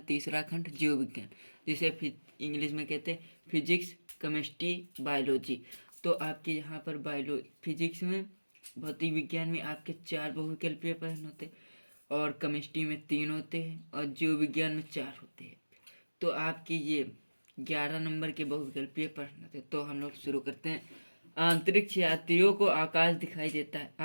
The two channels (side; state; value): both; inverted; correlation -1.00